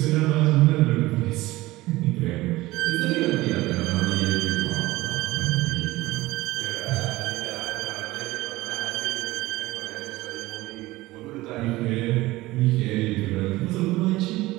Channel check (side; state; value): left; quieter; 18.8 dB